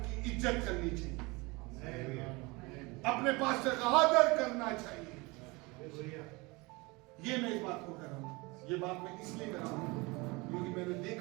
इज्जत करनी चाहिए, अपने पास्टर का आदर करना चाहिए। ये मैं इस बात को कर रहा हूं, ये बात मैं इसलिए कर रहा हूं क्योंकि मैंने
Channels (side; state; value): left; quieter; 25.2 dB